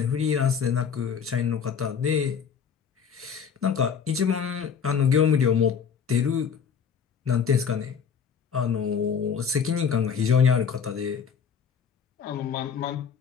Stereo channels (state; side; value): quieter; right; 6.9 dB